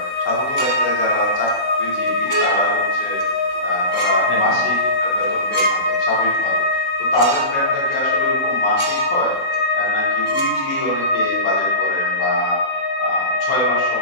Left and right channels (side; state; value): right; late; 16 ms